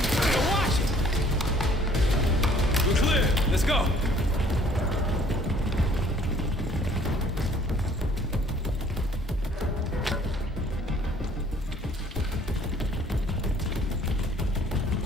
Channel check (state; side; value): normal; both; correlation 0.58